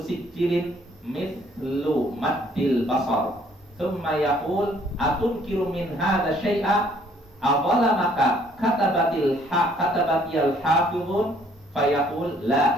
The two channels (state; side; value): normal; both; correlation 0.62